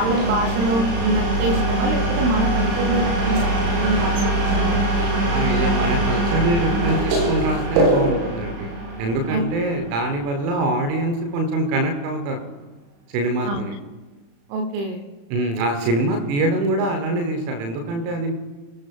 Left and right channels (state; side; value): late; left; 35 ms